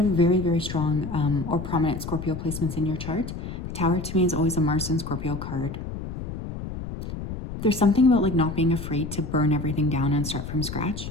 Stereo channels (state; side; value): noise; left; rumble, 8 dB below the sound